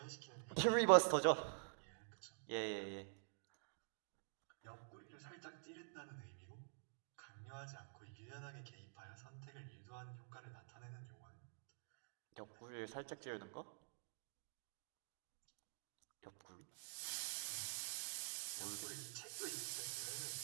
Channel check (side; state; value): left; silent; digital silence